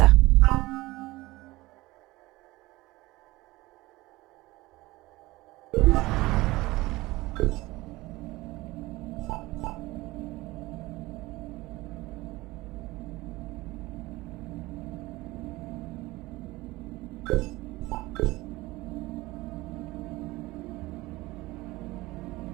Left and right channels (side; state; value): left; quieter; 19.9 dB